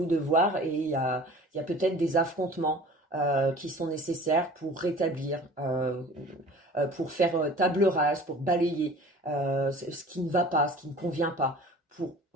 de voir, et il y a peut-être des affrontements qui sont nécessaires pour rétablir, pour faire table rase, pour balayer ce qui ne va pas, ce qui ne convient pas, pour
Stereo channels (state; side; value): normal; both; correlation 0.44